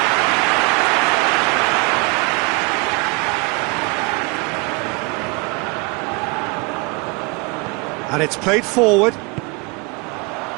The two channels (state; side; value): quieter; left; 28.6 dB